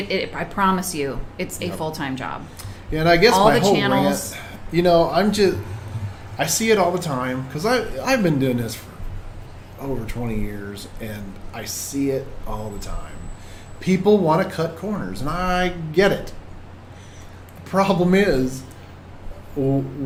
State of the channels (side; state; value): both; identical; correlation 1.00